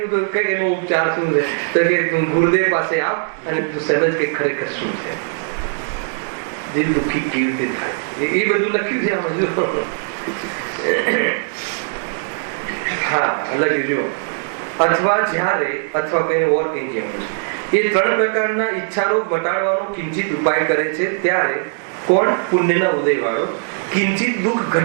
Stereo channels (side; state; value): left; silent; digital silence